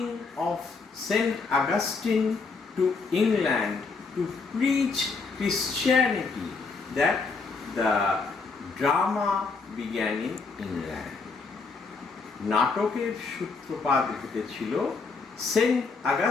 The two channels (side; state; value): right; quieter; 4.4 dB